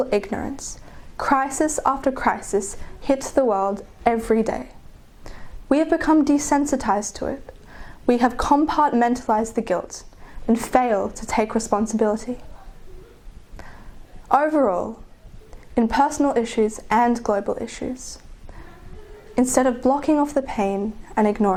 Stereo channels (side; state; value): both; identical; correlation 1.00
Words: ignorance, crisis after crisis hits the world every day. We have become desensitized to it. We have compartmentalized the guilt and fail to take responsibility. Overall, in personal issues and global issues, instead of blocking off the pain and